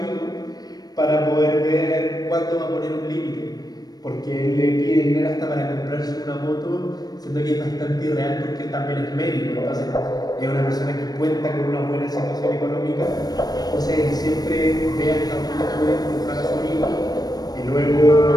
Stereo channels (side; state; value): right; late; 0.19 ms